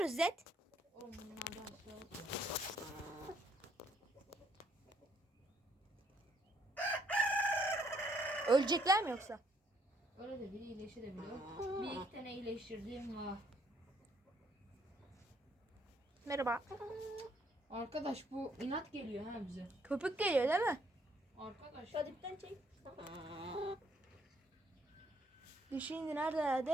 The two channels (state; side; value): normal; both; correlation 0.68